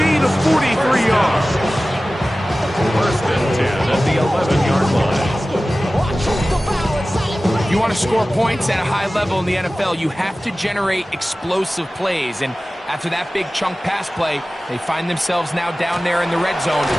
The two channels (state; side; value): normal; both; correlation 0.96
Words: of 43 yards. 1st and 10 at the 11-yard line. You want to score points at a high level in the NFL, you have to generate explosive plays. And after that big chunk pass play, they find themselves now down there in the red zone.